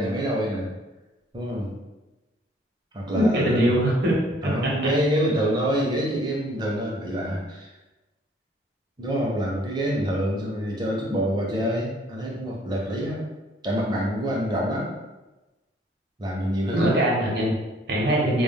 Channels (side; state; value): both; normal; correlation 0.60